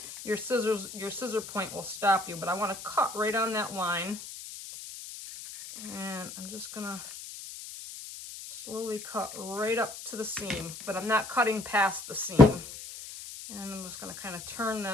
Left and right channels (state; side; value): noise; left; hiss, 12 dB below the sound